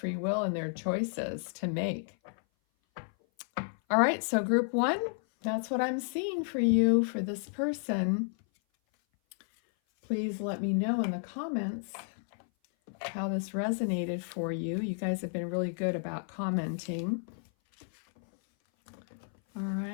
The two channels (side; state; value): right; silent; 57 dB below the other